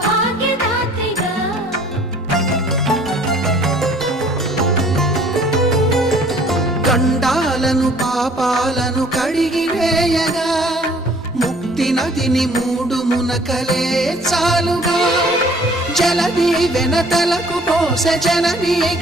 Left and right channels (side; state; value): both; normal; correlation 0.55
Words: గండాలను పాపాలను కడిగివేయగా ముక్తి నదిని మూడు మునకలే చాలుగా జలది వెనతలకు పోసె జనని